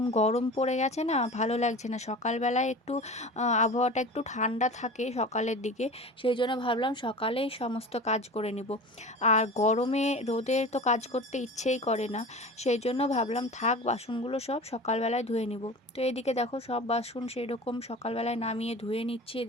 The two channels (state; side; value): normal; both; correlation 0.35